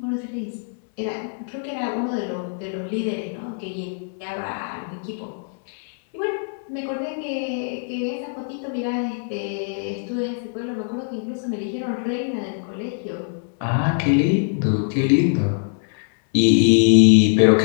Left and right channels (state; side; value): silent; right; 64 dB below the other